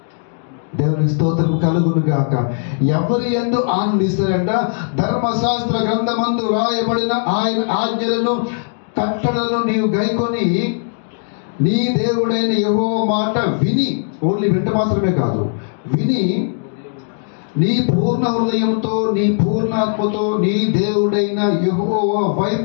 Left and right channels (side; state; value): right; silent; digital silence